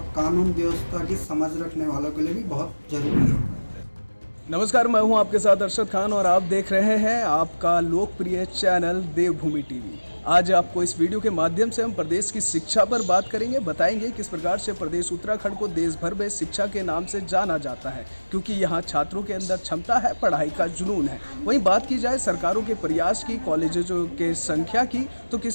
कानून व्यवस्था की समझ रखने वालों के लिए भी बहुत जरूरी है। नमस्कार, मैं हूं आपके साथ अरशद खान और आप देख रहे हैं आपका लोकप्रिय चैनल देवभूमि टीवी। आज आपको इस वीडियो के माध्यम से हम प्रदेश की शिक्षा पर बात करेंगे, बताएंगे किस प्रकार से प्रदेश उत्तराखंड को देश भर में शिक्षा के नाम से जाना जाता है, क्योंकि यहाँ छात्रों के अंदर क्षमता है, पढ़ाई का जुनून है। वहीं बात की जाए सरकारों के प्रयास की, कॉलेजों के संख्या की, तो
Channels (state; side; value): inverted; both; correlation -1.00